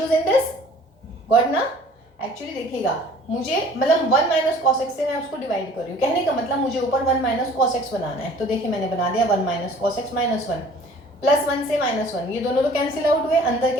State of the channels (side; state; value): both; normal; correlation 0.50